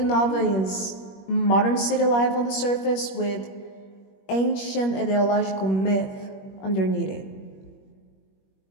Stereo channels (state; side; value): late; right; 21 ms